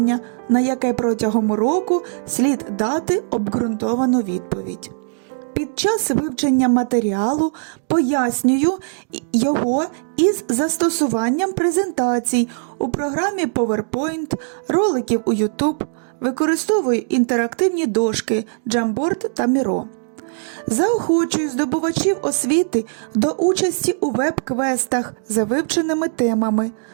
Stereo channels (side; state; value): left; silent; digital silence